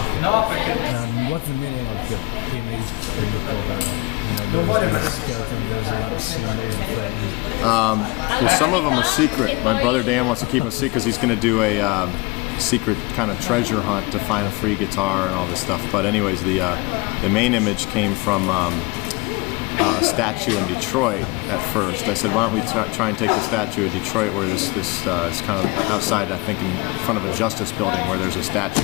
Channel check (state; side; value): quieter; right; 24.8 dB